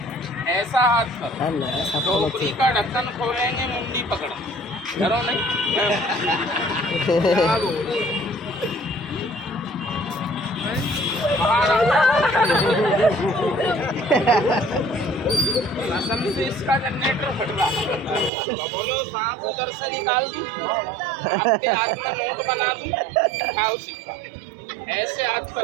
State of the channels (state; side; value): drops out; left; at 18.3 s